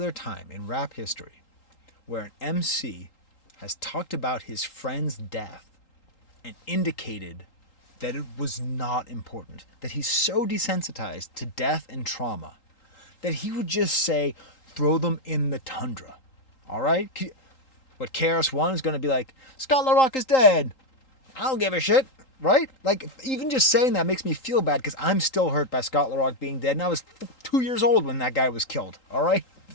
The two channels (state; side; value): late; right; 3.8 ms